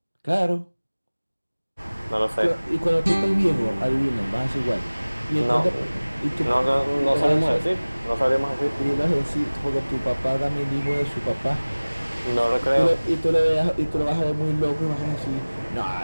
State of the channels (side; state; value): both; inverted; correlation -1.00